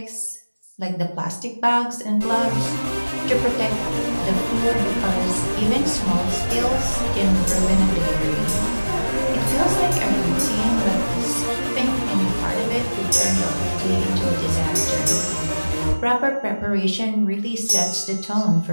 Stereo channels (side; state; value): both; inverted; correlation -1.00